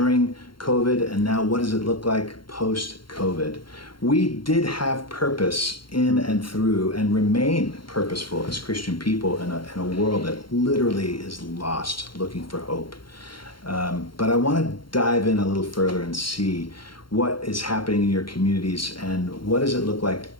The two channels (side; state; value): right; late; 0.73 ms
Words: COVID, and now what does it look like post-COVID? We did have purpose in and through and remain purposeful as Christian people in a world that literally is lost, looking for hope. But I want to dive in a little further and see what is happening in your communities and what does it look like